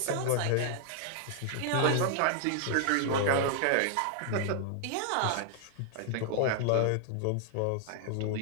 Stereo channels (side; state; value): both; different; correlation 0.00